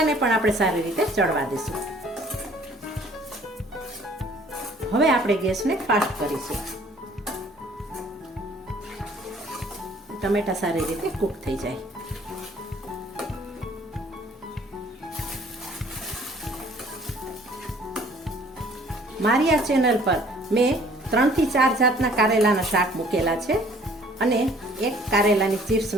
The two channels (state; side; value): normal; both; correlation 0.56